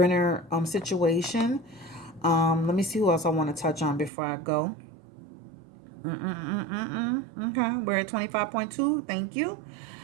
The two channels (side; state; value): left; drops out; at 4.1 s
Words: situation. Let me see who else I want to touch on before I go. Okay, we're at 25.2. Thank you.